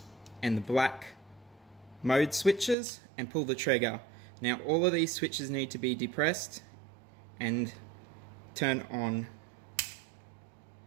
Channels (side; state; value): left; drops out; at 2.8 s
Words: and the black mode switches and pull the trigger. Now all of these switches need to be depressed and turn on